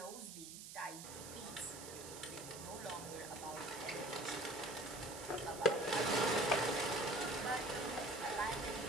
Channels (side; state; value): right; noise; hiss, 11 dB below the sound